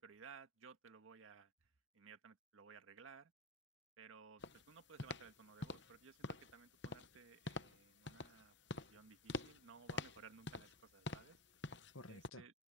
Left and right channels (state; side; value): normal; both; correlation 0.17